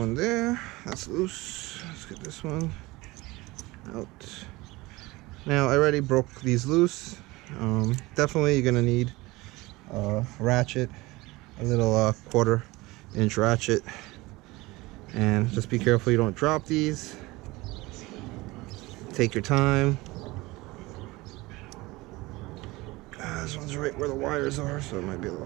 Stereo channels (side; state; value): left; quieter; 21.3 dB